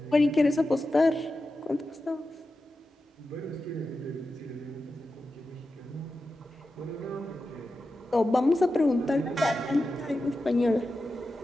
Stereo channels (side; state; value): both; normal; correlation 0.91